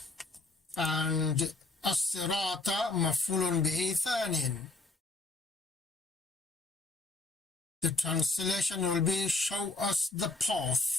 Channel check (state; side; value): quieter; right; 3.2 dB